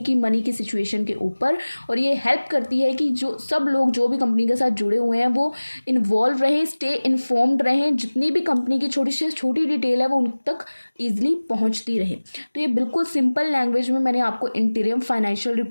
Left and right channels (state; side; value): inverted; both; correlation -1.00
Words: मनी की सिचुएशन के ऊपर। और ये हेल्प करती है कि जो सब लोग जो भी कंपनी के साथ जुड़े हुए हैं वो इन्वॉल्व रहें, स्टे इन्फॉर्म्ड रहें, जितनी भी कंपनी की छोटी से छोटी डिटेल है वो उन तक ईजिली पहुंचती रहे। तो ये बिल्कुल सिंपल लैंग्वेज में मैंने आपको इंटीरियम फाइनेंशियल